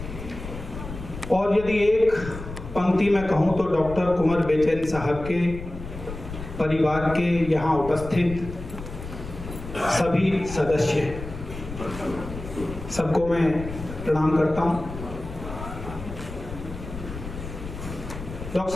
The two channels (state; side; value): noise; left; rumble, 10 dB below the sound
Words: और यदि एक पंक्ति में कहूं तो डॉक्टर कुंवर बेचैन साहब के परिवार के यहाँ उपस्थित सभी सदस्य, सबको मैं प्रणाम करता हूं। डॉक्टर